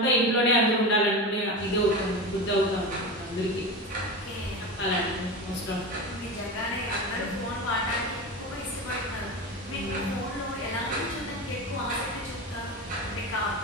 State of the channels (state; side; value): normal; both; correlation 0.25